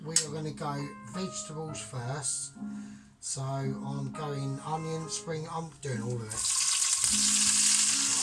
we are going to go vegetables first. So I'm going onion, spring, I'm doing all of it.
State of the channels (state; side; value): identical; both; correlation 1.00